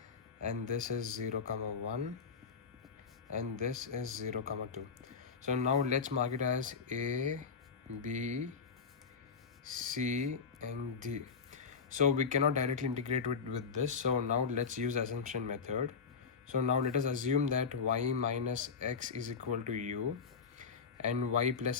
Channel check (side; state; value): right; quieter; 5.5 dB